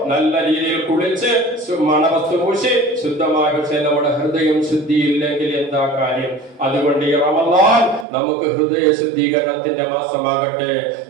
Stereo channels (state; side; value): drops out; left; at 8.1 s